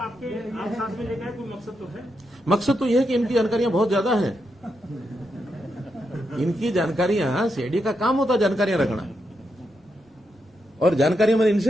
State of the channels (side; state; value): both; normal; correlation 0.83